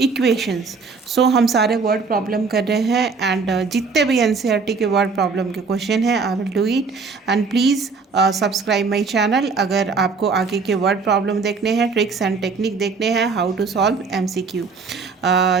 So हम सारे वर्ड प्रॉब्लम कर रहे हैं, एंड जितने भी एनसीईआरटी के वर्ड प्रॉब्लम के क्वेश्चन हैं I will do it. And please subscribe my channel अगर आपको आगे के वर्ड प्रॉब्लम देखने हैं, ट्रिक्स एंड टेक्निक देखने हैं, how to solve MCQ।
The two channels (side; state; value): left; quieter; 4.7 dB